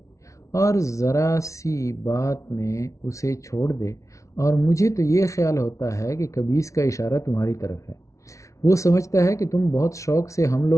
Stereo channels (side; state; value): right; late; 0.15 ms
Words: اور ذرا سی بات میں اسے چھوڑ دے؟ اور مجھے تو یہ خیال ہوتا ہے کہ کبیس کا اشارہ تمہاری طرف ہے۔ وہ سمجھتا ہے کہ تم بہت شوق سے ہم